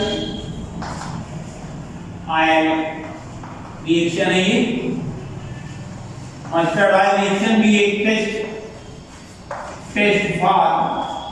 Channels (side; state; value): both; identical; correlation 1.00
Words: oil reaction है ये। मस्टर्ड आयल रिएक्शन भी एक test for